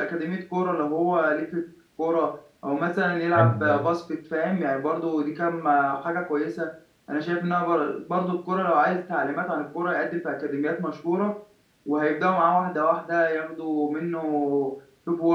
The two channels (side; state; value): both; identical; correlation 1.00